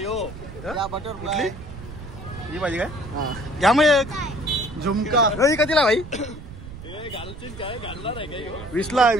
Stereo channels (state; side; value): noise; right; rumble, 13 dB below the sound